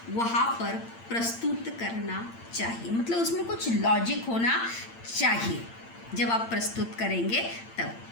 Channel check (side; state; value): right; late; 8.8 ms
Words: वहाँ पर प्रस्तुत करना चाहिए। मतलब उसमें कुछ लॉजिक होना चाहिए जब आप प्रस्तुत करेंगे